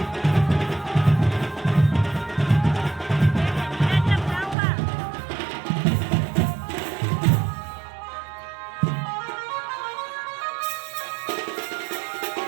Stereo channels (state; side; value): drops out; left; at 4.5 s